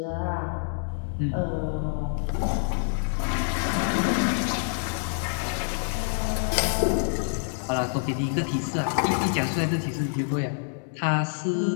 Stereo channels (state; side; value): silent; right; 60 dB below the other